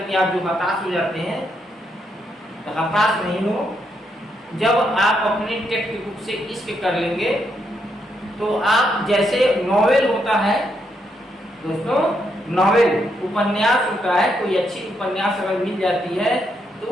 के आप जो हताश हो जाते हैं, तो हताश नहीं हो। जब आप अपने टेक्स्ट बुक से इश्क कर लेंगे तो आप जैसे नॉवेल होता है दोस्तों, नॉवेल उपन्यास होता है, कोई अच्छी उपन्यास अगर मिल जाती है तो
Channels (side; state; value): both; normal; correlation 0.78